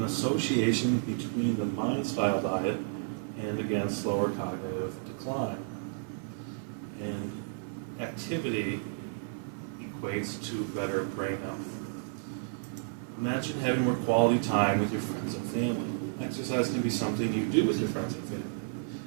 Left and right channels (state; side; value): silent; left; 57 dB below the other